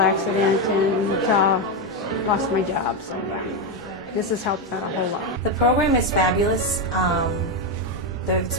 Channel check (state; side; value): normal; both; correlation 0.08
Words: and lost my job, so yeah. This has helped out a whole lot. The program is fabulous. It's